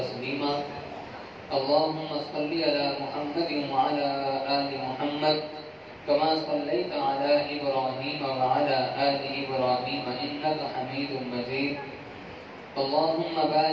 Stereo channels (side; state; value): both; identical; correlation 1.00